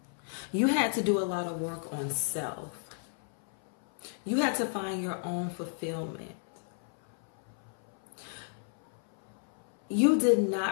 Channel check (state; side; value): silent; right; 56 dB below the other